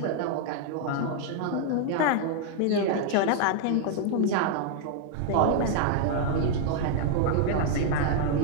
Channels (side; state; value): both; different; correlation 0.00